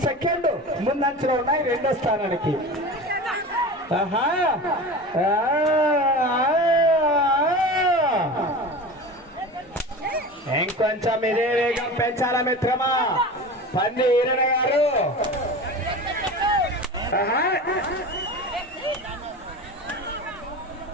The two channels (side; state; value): both; normal; correlation 0.32